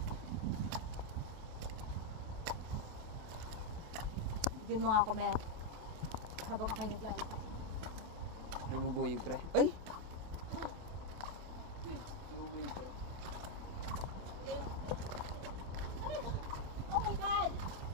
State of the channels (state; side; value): late; left; 28 ms